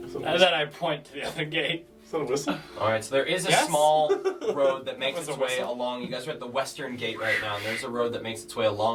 and then I point to the other gate. Is that a whistle? Alright, so there is a Yes? small road that makes Was its a way whistle? along. You guys are at the western gate right now, and there's a road that makes its way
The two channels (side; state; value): both; identical; correlation 1.00